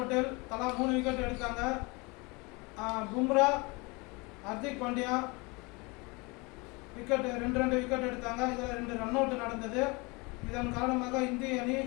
தலா 3 விக்கெட் எடுத்தாங்க. பும்ரா, ஹர்திக் பாண்டியா ரெண்டு விக்கெட் எடுத்தாங்க. இதில் 2 ரன் அவுட் நடந்தது. இதன் காரணமாக இந்திய அணி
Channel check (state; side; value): quieter; right; 27.0 dB